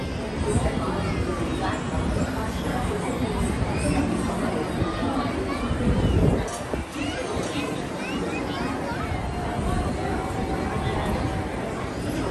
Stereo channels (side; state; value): both; identical; correlation 1.00